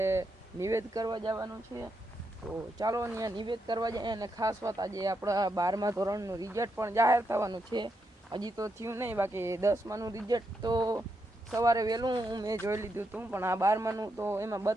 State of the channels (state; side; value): normal; both; correlation 0.82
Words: નિવેદ કરવા જવાનું છે. તો ચાલો ત્યાં નિવેદ કરવા જાય. અને ખાસ વાત, આજે આપણા 12મા ધોરણનું રિઝલ્ટ પણ જાહેર થવાનું છે. હજી તો થયું નહીં, બાકી 10માનું રિઝલ્ટ તો સવારે વહેલું મેં જોઈ લીધું હતું, પણ આ 12માનું તો એમાં